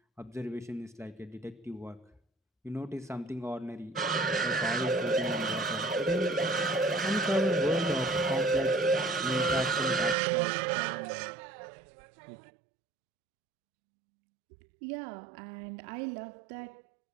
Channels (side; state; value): left; drops out; at 10.2 s